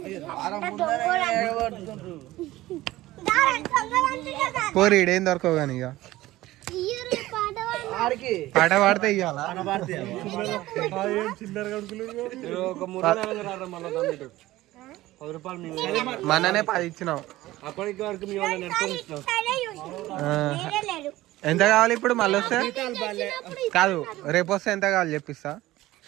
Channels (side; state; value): left; quieter; 16.9 dB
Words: పోరి ఈడేం దొరకవు కానీ ఇక పాట పాడితే ఇవ్వాల. ఒక 3 నెలలు రారా మళ్ళీ 10 రూపాయలు మననే 10 ఇచ్చినాం. అప్పటికి వరకు మీ వాళ్ళని నెట్టుకొని ఇచ్చినాం. ఎంత కావాలి ఇప్పుడు మళ్ళీ వస్తే? కాదు రేపు వస్తే ఎంత కావాలి చెప్పిస్తా.